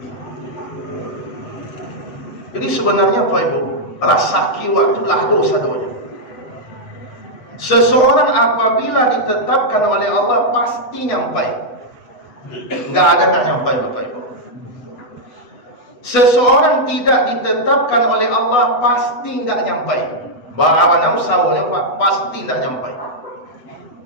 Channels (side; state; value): right; late; 8.1 ms